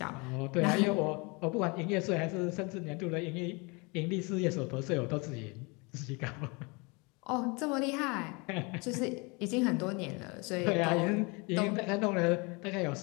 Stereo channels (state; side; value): quieter; right; 28.9 dB